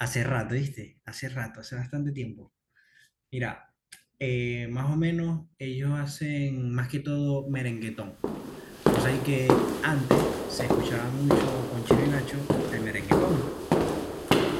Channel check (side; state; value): both; identical; correlation 1.00